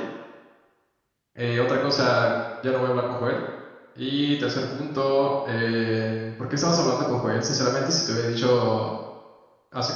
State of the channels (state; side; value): identical; both; correlation 1.00